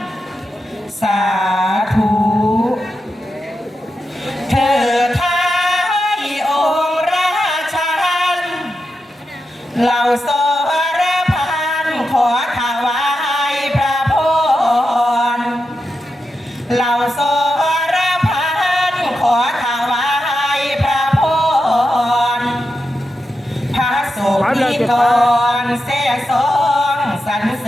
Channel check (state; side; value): normal; both; correlation 0.88